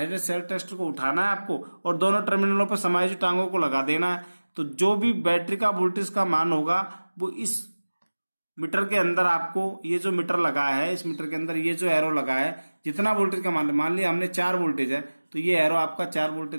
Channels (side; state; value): both; inverted; correlation -1.00